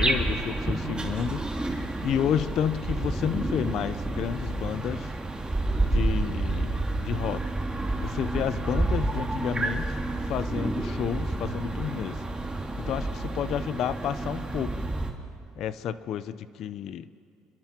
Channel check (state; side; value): normal; both; correlation 0.76